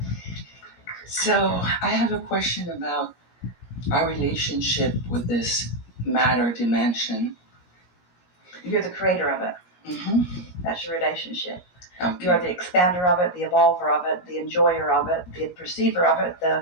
So I have a question about our relationship with this matter dimension. You're the creator of it. Mm-hmm. That's your relationship. Okay. You're the expander of it, the evolver of it, the enjoyer of it, the perceiver of it,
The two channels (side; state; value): right; late; 17 ms